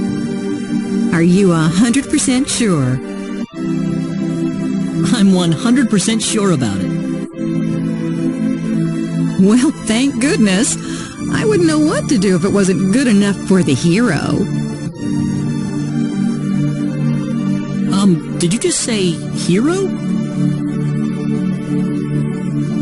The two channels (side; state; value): both; identical; correlation 1.00